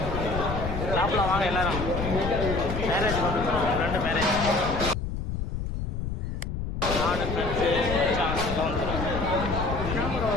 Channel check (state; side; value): noise; left; rumble, 4 dB below the sound